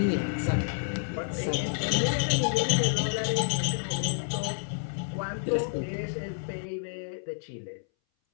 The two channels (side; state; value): right; silent; 58 dB below the other